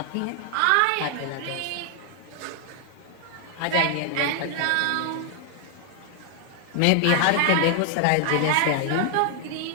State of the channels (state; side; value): different; both; correlation 0.00